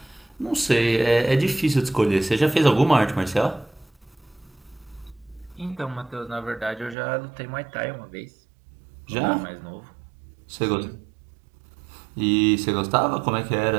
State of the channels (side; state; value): left; drops out; at 7.0 s